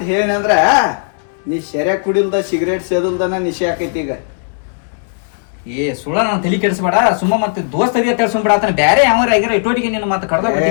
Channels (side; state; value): right; silent; digital silence